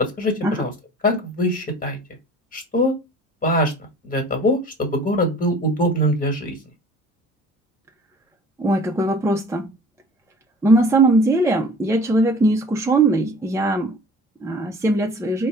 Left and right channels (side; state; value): both; normal; correlation 0.46